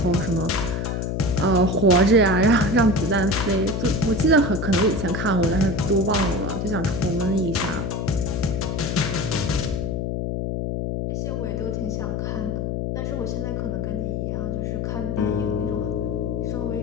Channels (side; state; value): left; noise; hum, 1 dB below the sound